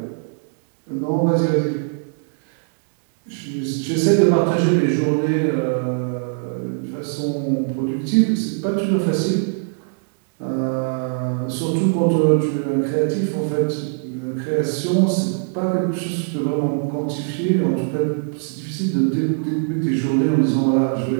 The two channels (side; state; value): left; silent; digital silence